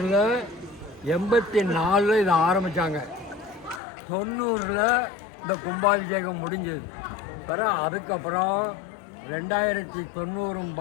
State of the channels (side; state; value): right; drops out; at 3.8 s